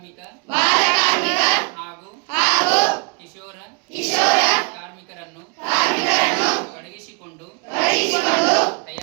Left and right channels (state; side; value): quieter; left; 32.9 dB